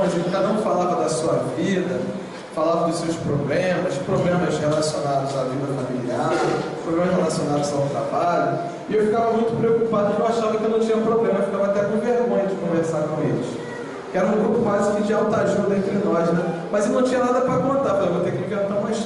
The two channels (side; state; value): both; identical; correlation 1.00